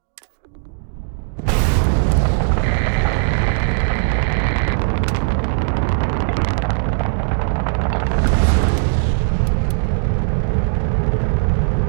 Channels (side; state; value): left; silent; digital silence